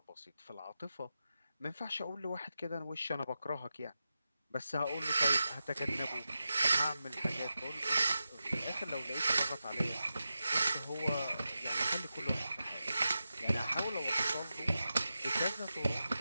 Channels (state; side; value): inverted; both; correlation -0.92